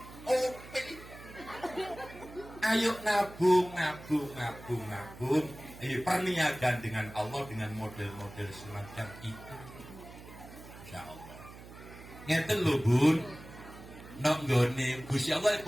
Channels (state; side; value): noise; right; hum, 16 dB below the sound